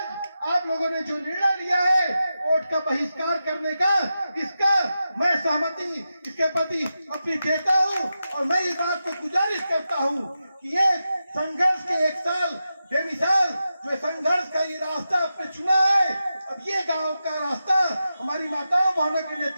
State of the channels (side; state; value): both; inverted; correlation -0.90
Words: आप लोगों ने जो निर्णय लिया है वोट का बहिष्कार करने का, इसका मैं सहमति इसके प्रति अपनी देता हूँ। और मैं इस बात को गुजारिश करता हूँ कि ये संघर्ष के 1 साल बेमिसाल जो संघर्ष का ये रास्ता आपने चुना है, अब ये गांव का रास्ता हमारी माताओं बहनों के